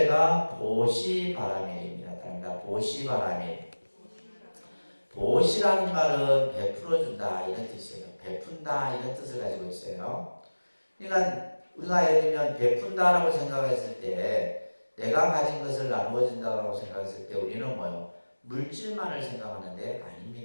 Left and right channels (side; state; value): both; inverted; correlation -1.00